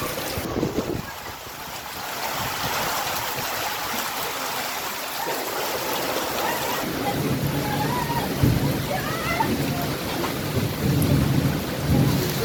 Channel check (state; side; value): identical; both; correlation 1.00